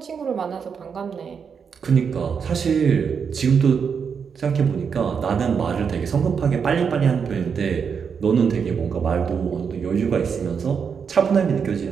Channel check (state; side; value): quieter; left; 6.5 dB